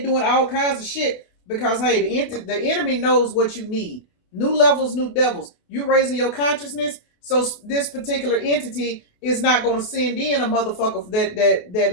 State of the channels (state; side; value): late; right; 28 ms